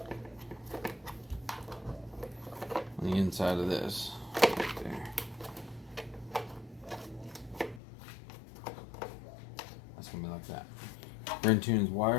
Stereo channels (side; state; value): right; drops out; at 7.8 s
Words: on the inside of this. Right there. That's going to be like that. Brentune's